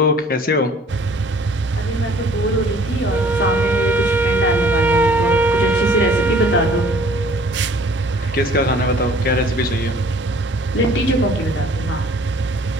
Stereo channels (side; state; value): both; normal; correlation 0.54